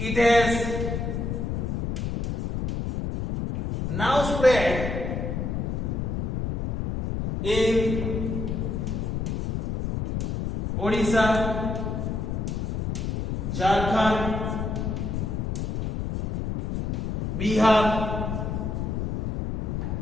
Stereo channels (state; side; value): noise; left; rumble, 1 dB below the sound